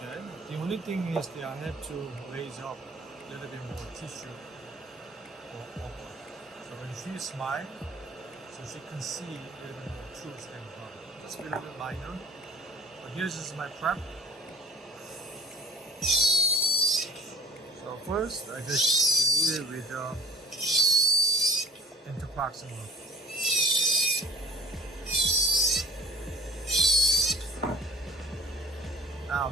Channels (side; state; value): both; normal; correlation 0.49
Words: The only thing is that I have to raise up a little bit more tissue for upper. So when she smiles, so she can see a little bit more truth than her. Just a little bit minor. But here's just my prep. So first, I just delete it with interproximal. Now